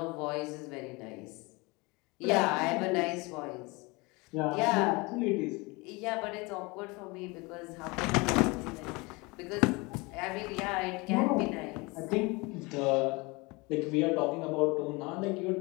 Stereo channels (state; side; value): quieter; right; 25.8 dB